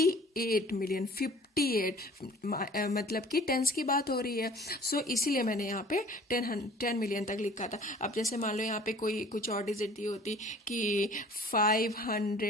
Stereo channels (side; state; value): both; normal; correlation 0.49